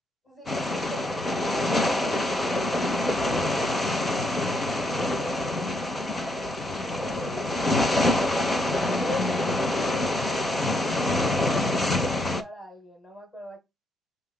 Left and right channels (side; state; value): both; normal; correlation 0.75